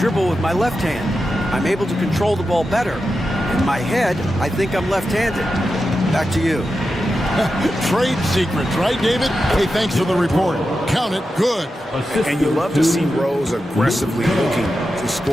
with my left hand. I'm able to control the ball better. In my head, I think I'm left-handed. Back to you. Trade secrets, right, David? Hey, thanks for the report. Count it good. And you love to see Rose aggressively looking to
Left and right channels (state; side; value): normal; both; correlation 0.90